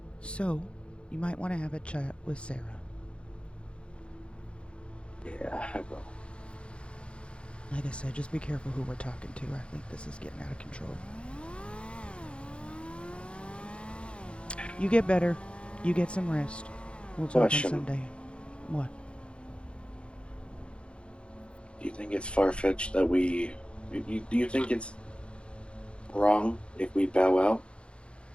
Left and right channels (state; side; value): late; right; 0.058 ms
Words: So, you might want to have a chat with Sarah. Yeah, I will. Like I said, just be careful who we're talking to. I think this is getting out of control. You get better. You get some rest. We'll talk on Sunday. What? Do you think it's far-fetched that we... Do you think it's wrong if we bow out?